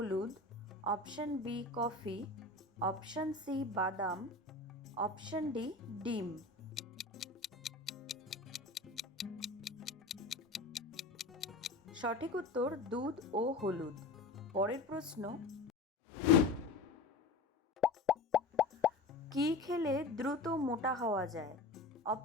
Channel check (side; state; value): right; quieter; 3.2 dB